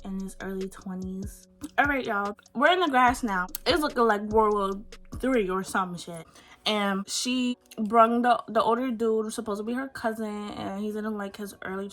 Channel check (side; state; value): both; identical; correlation 1.00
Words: in his early 20s. All right, y'all. We're in the grass now. It's looking like World War III or some shit. And she brung the older dude, supposed to be her cousin, and he's in like his early